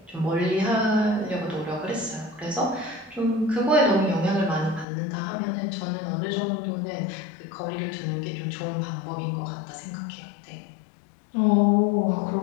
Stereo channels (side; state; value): right; drops out; at 4.9 s